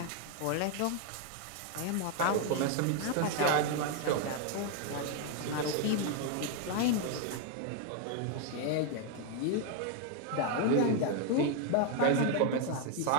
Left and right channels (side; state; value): both; different; correlation 0.01